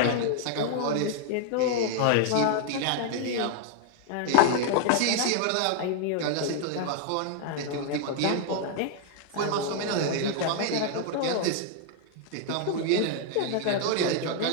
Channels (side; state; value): both; different; correlation 0.00